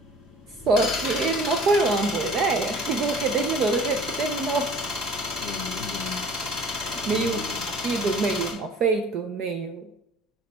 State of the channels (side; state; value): both; normal; correlation 0.48